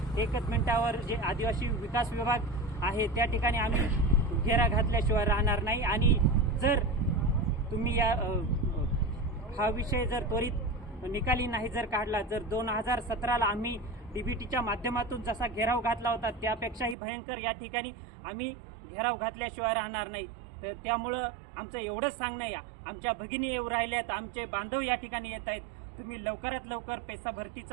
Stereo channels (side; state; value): left; drops out; at 16.9 s